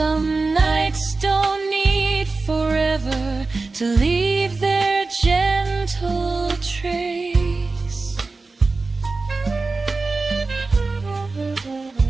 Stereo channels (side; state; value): left; quieter; 3.8 dB